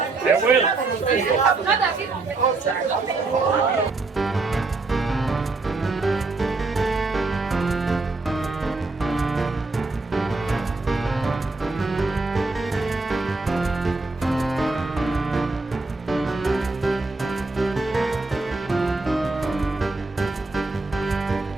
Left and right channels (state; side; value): quieter; left; 3.5 dB